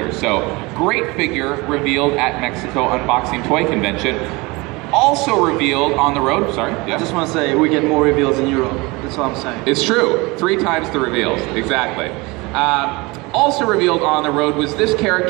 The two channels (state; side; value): quieter; left; 24.5 dB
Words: So great figure revealed at Mexico Unboxing Toy Convention. Also revealed on the road, sorry. Yeah. I just want to say, we get more reveals in Europe. That's what I'm saying. It's true. 3 times the reveals, exactly. Also revealed on the road was this